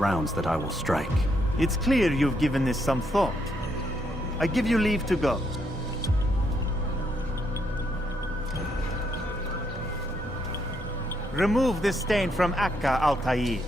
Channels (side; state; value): both; normal; correlation 0.76